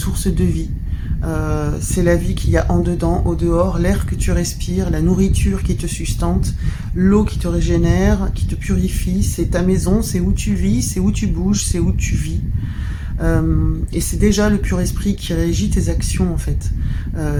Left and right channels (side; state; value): both; identical; correlation 1.00